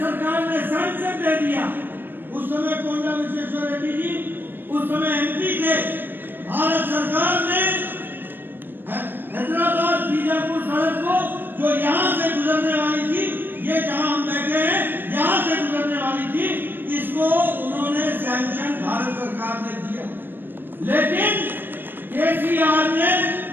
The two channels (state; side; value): late; left; 0.095 ms